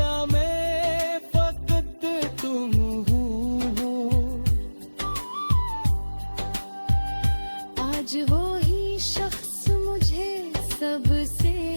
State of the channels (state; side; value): inverted; both; correlation -1.00